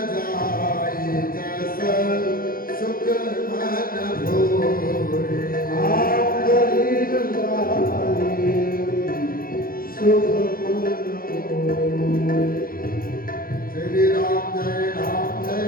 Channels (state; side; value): late; right; 0.42 ms